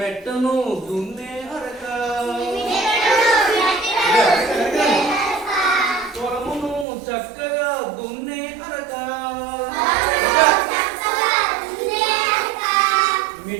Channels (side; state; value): left; drops out; at 6.9 s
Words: దున్నే అరక. పొలమును చక్కగా దున్నే అరక.